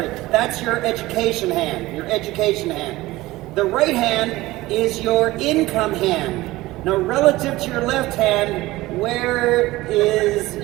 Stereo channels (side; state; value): left; quieter; 18.6 dB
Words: your education hand, The right hand is your income hand. Now, relative to your left hand, where is